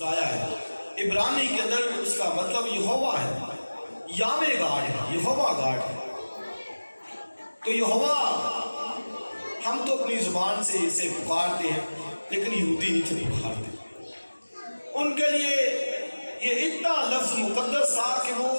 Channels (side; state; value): both; inverted; correlation -1.00